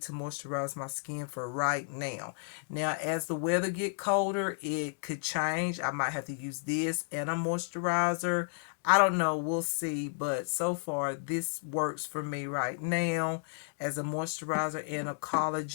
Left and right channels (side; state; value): right; silent; digital silence